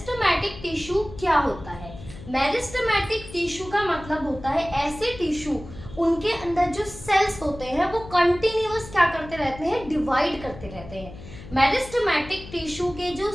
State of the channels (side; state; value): left; noise; hum, 15 dB below the sound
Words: टिश्यू क्या होता है? मेरिस्टेमेटिक टिश्यू का मतलब होता है ऐसे टिश्यू उनके अंदर जो सेल्स होते हैं वो कंटिन्यूअस क्या करते रहते हैं, डिवाइड करते रहते हैं। मेरिस्टेमेटिक टिश्यू के जो